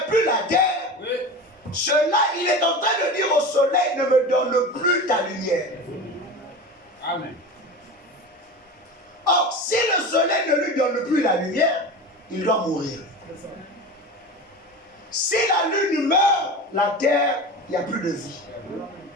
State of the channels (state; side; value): normal; both; correlation 0.29